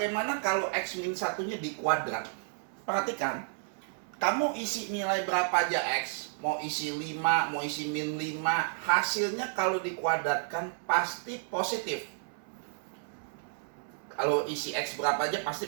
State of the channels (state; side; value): silent; left; 57 dB below the other